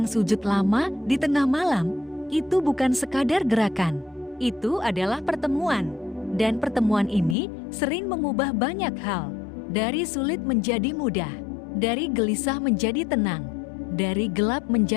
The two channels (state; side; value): drops out; right; at 7.4 s